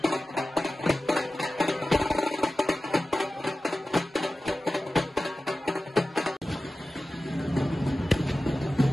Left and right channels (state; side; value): normal; both; correlation 0.95